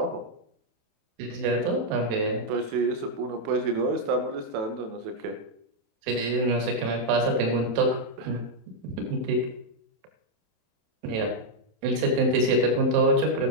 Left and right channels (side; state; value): left; late; 27 ms